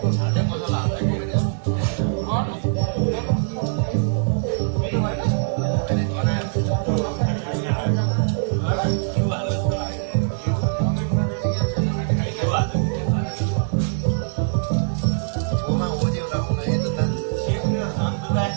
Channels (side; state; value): left; silent; digital silence